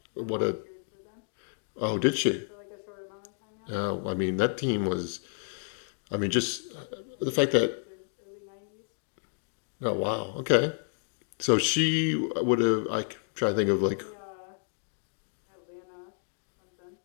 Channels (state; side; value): silent; right; digital silence